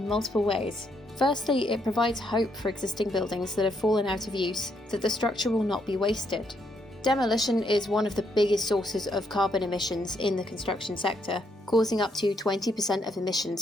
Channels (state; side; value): normal; both; correlation 0.75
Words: multiple ways. Firstly, it provides hope for existing buildings that have fallen out of use, that the structure will not be wasted. Demolition is one of the biggest sources of carbon emissions in the construction sector, causing up to 20% of